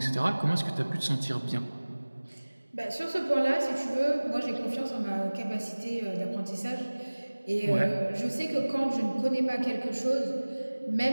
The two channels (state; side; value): inverted; both; correlation -1.00